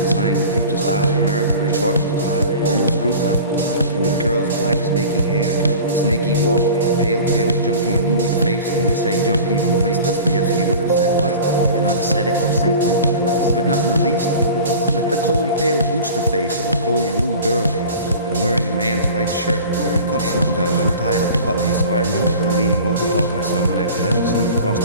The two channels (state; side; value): inverted; both; correlation -0.39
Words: the future style of America with short, almost crew cut, with curls, black, snaky hair, snaky walk, pale, junky, anemic face, and we say junky when once Dostoevsky would have said what? You're not ascetic or saintly, but not in the least. Like the cold, pale booster face of a cold blue girl, and wearing a man's white shirt with the cuffs undone, untied at the buttons. So I remember her leaning over talking to someone after having slipped across